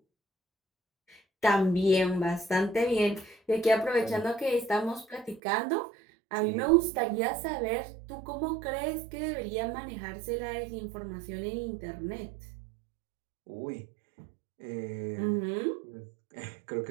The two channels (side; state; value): left; drops out; at 5.4 s